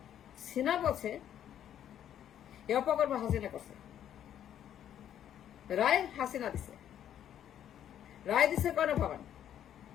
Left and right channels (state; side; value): quieter; right; 10.3 dB